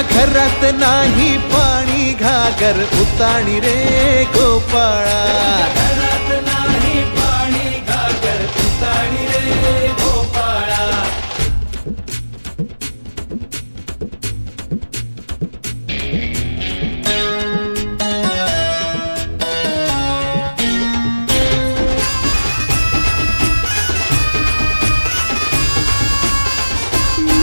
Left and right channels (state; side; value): inverted; both; correlation -1.00